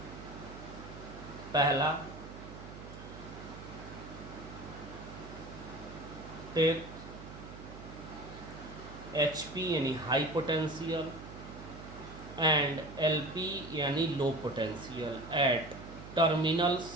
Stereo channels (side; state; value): right; noise; hum, 13 dB below the sound